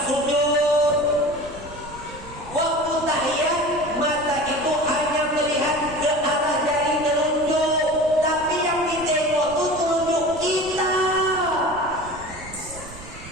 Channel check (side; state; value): right; noise; rumble, 16 dB below the sound